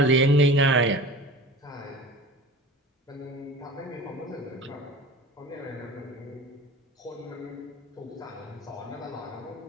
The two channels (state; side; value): normal; both; correlation 0.38